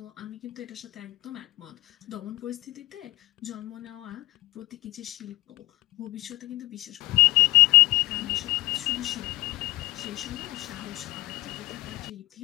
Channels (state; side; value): quieter; right; 19.5 dB